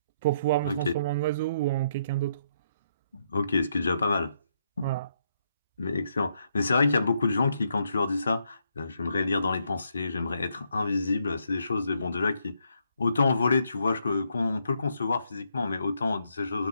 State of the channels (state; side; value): inverted; both; correlation -0.75